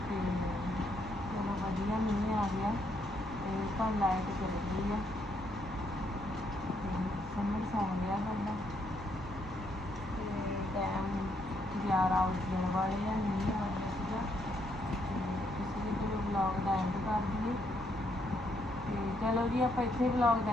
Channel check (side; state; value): both; normal; correlation 0.74